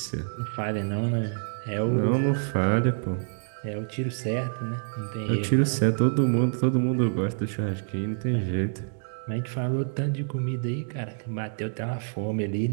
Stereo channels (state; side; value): silent; left; digital silence